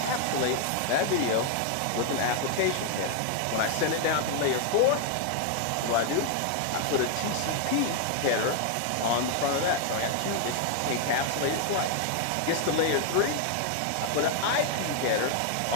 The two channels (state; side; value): different; both; correlation 0.00